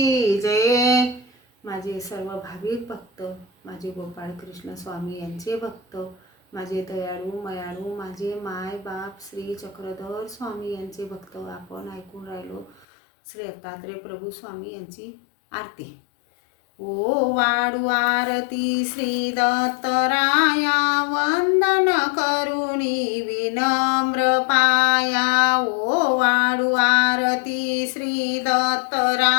जय। माझे सर्व भाविक भक्त, माझे गोपाळ कृष्ण स्वामी यांचे भक्त, माझे दयाळू मयाळू माझे माय बाप श्री चक्रधर स्वामी यांचे भक्त आपण ऐकून राहिलो श्री दत्तात्रेय प्रभु स्वामी यांची आरती। ओ वाडू आरती श्री दत्तराया, वंदन करुणी विनम्र पाया। ओ वाडू आरती श्री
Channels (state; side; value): drops out; right; at 12.9 s